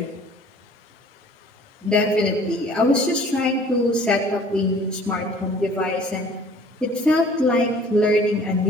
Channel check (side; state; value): both; normal; correlation 0.51